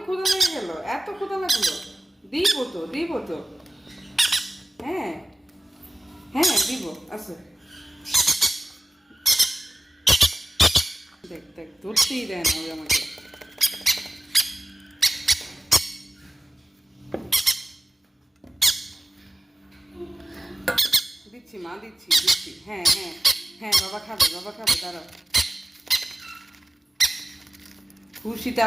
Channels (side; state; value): both; normal; correlation 0.95